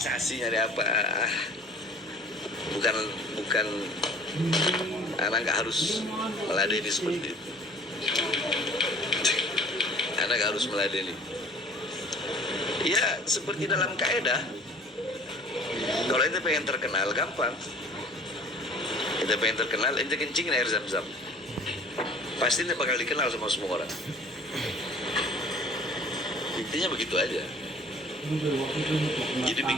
nyari apa? Bukan anak nggak harus meladeni seperti itu. Anak nggak harus meladeni. Ya seperti dalam kaidah. Kalau ente pengen terkenal gampang. Ente pengen terkenal, ente kencingin air zam-zam. Pasti ente bakal dikenal sama semua orang. Intinya begitu aja. Jadi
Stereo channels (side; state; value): both; normal; correlation 0.49